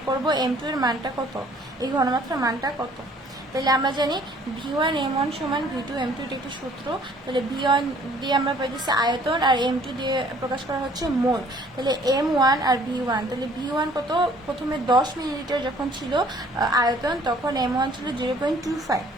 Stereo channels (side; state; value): both; normal; correlation 0.57